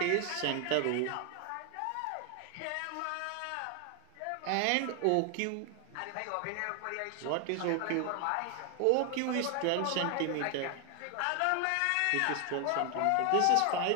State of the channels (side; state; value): both; different; correlation 0.00